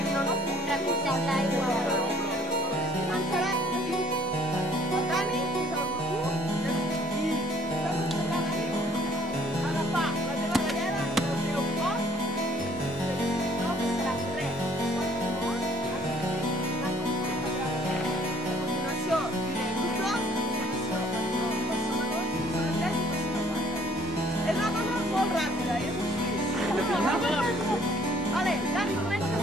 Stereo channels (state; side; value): normal; both; correlation 0.59